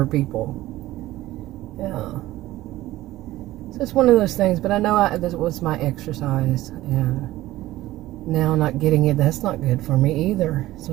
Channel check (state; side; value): quieter; left; 16.2 dB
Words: people. Yeah. So it's one of those things, but I know that was my exercise, and now not getting it, that's not good for me either.